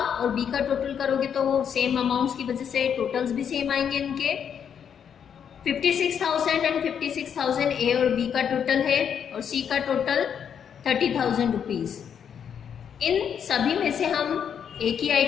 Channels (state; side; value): quieter; right; 8.0 dB